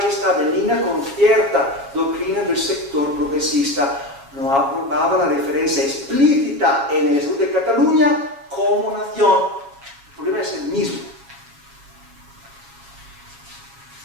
y estaba en línea con cierta doctrina del sector progresista. No aprobaba la referencia explícita en el Estatuto de Cataluña como nación. El problema es el mismo.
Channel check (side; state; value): left; late; 7.3 ms